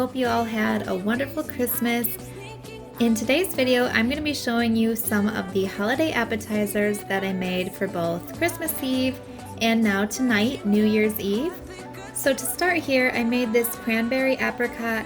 you all had a wonderful Christmas. In today's video, I'm going to be showing you some of the holiday appetizers that I made for both Christmas Eve and now tonight, New Year's Eve. So to start here, I made this cranberry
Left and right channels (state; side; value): identical; both; correlation 1.00